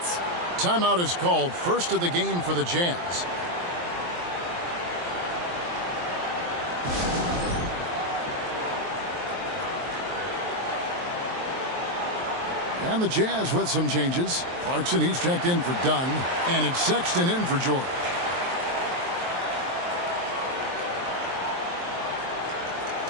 Timeout is called, first of the game for the Jazz. And the Jazz with some changes. Clarkson, he's checked in for Dunn. And it's Sexton in for George.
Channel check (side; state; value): left; late; 23 ms